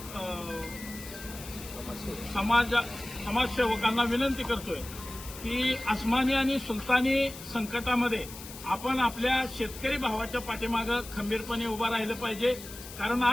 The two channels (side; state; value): left; noise; hiss, 14 dB below the sound